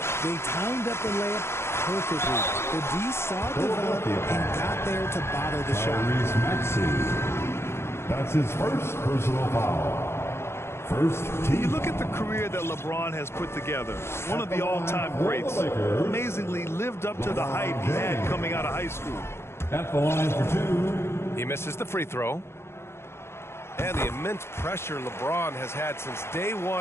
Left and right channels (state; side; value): late; right; 0.12 ms